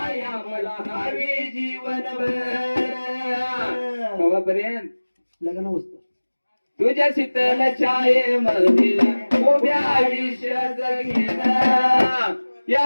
मला हवी जीवनभर कवापर्यंत लग्न होतं तुझ्या शीतल छायेमध्ये उभ्या आयुष्य जगेन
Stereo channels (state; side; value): inverted; both; correlation -1.00